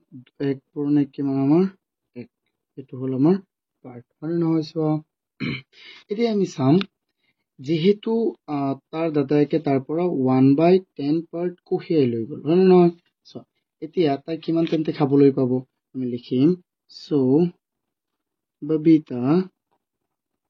1 পূৰণ 1 কিমান আমাৰ 1 এইটো হ'ল আমাৰ পাৰ্ট হয় নহয় চোৱা. এতিয়া আমি চাম যেহেতু তাৰ দাদাইকে তাৰ পৰা 1/10 পাৰ্ট কঢ়িয়াই লৈ গ'ল হয় নহয় চোৱা এতিয়া তাই কিমান তেন্তে খাবলৈ পাব আমি লিখিম so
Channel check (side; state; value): both; identical; correlation 1.00